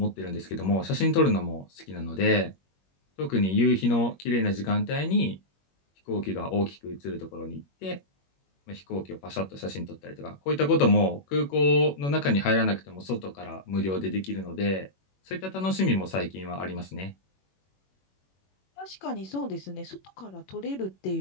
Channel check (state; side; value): late; right; 21 ms